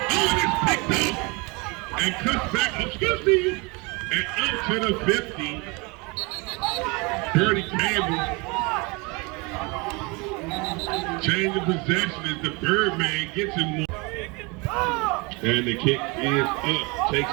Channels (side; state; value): left; quieter; 27.9 dB